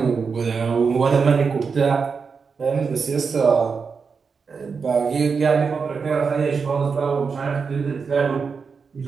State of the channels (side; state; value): left; quieter; 5.4 dB